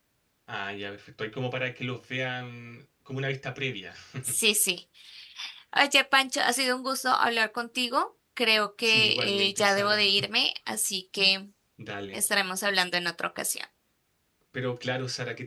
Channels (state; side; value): identical; both; correlation 1.00